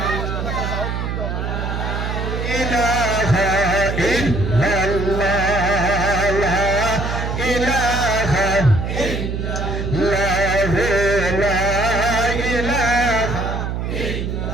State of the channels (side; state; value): right; noise; hum, 3 dB below the sound